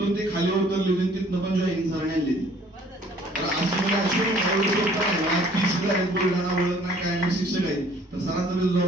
ते खाली उतरले, तिथनं पण जॉईनिंग सर आणली. बुलढाणा ओळख नाही काय नाही, शिक्षक आहेत. तर सरांचं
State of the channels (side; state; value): both; normal; correlation 0.56